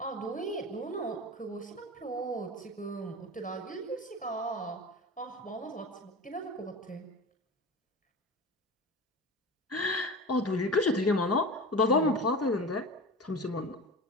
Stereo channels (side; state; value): both; normal; correlation 0.30